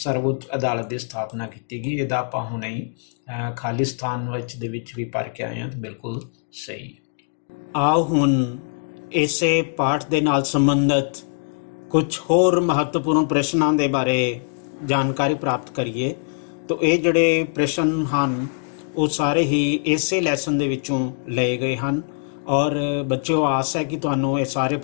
ਅਦਾਲਤ ਦੀ ਸਥਾਪਨਾ ਕੀਤੀ ਗਈ। ਇਹਦਾ ਆਪਾਂ ਹੁਣੇ ਹੀ ਖਾਲਿਸਤਾਨ ਦੇ ਵਿੱਚ ਵੀ ਪੜ੍ਹ ਕੇ ਆਏ ਹਾਂ, ਤਾਂ ਬਿਲਕੁਲ ਸਹੀ। ਆਓ ਹੁਣ ਇਸੇ ਪਾਠ ਦੇ ਨਾਲ ਸੰਬੰਧਿਤ ਕੁਝ ਹੋਰ ਮਹੱਤਵਪੂਰਨ ਪ੍ਰਸ਼ਨਾਂ ਦੇ ਬਾਰੇ ਜਾਣਕਾਰੀ ਪ੍ਰਾਪਤ ਕਰੀਏ। ਤਾਂ ਇਹ ਜਿਹੜੇ ਪ੍ਰਸ਼ਨ ਹਨ ਉਹ ਸਾਰੇ ਹੀ ਇਸੇ ਲੈਸਨ ਦੇ ਵਿੱਚੋਂ ਲਏ ਗਏ ਹਨ। ਔਰ ਬੱਚਿਓ ਆਸ ਹੈ ਕਿ ਤੁਹਾਨੂੰ ਇਹ ਸਾਰੇ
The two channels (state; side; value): silent; right; 64 dB below the other